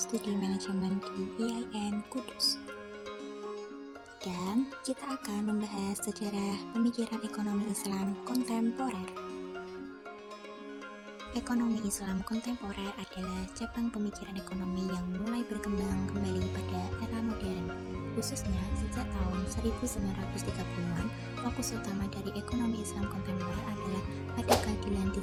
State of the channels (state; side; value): identical; both; correlation 1.00